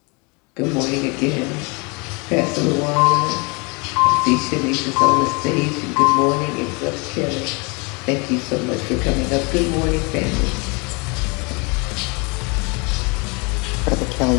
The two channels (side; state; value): right; quieter; 30.3 dB